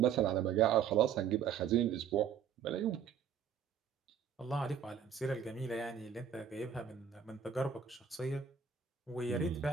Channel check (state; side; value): quieter; left; 7.7 dB